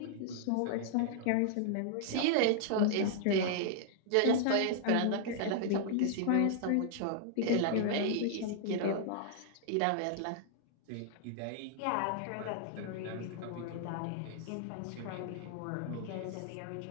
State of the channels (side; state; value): both; different; correlation -0.01